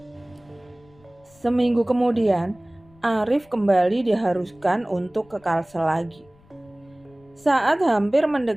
Seminggu kemudian, Arif kembali diharuskan untuk ke Kalsel lagi. Saat hampir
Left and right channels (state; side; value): noise; left; rumble, 29 dB below the sound